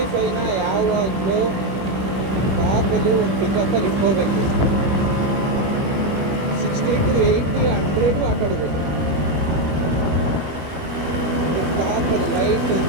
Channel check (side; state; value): left; late; 21 ms